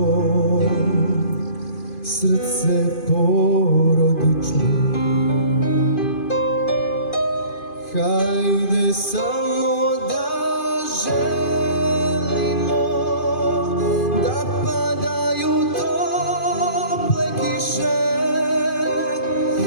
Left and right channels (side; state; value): right; late; 2.5 ms